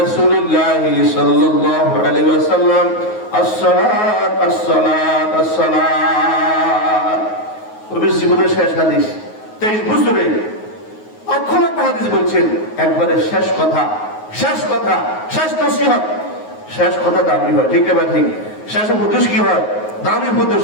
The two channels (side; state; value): right; late; 9.4 ms